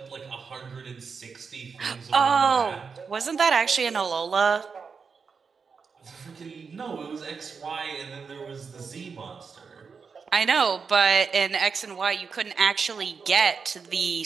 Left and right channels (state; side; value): quieter; left; 5.5 dB